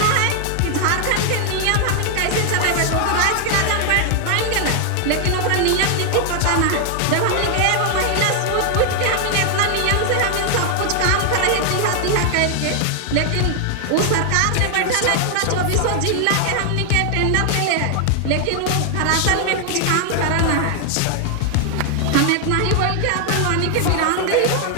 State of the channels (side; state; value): both; different; correlation 0.00